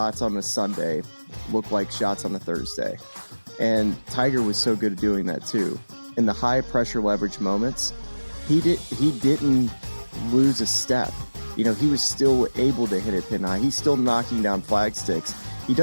on a Sunday look like shots on a Thursday. And Tiger was so good at doing that too. In the high pressure leverage moments, he didn't lose a step. He was still able to hit it pin high. He's still knocking down flag sticks. He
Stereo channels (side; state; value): both; inverted; correlation -1.00